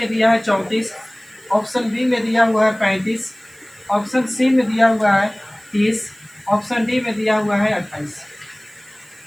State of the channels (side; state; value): right; noise; hiss, 27 dB below the sound